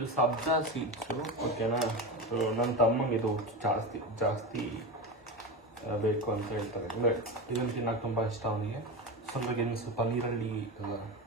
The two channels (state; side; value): normal; both; correlation 0.21